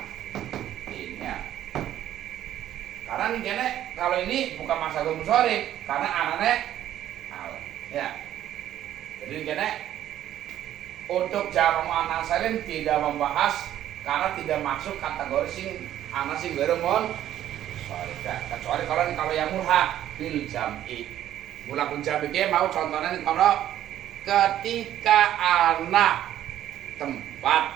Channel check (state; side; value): quieter; left; 12.0 dB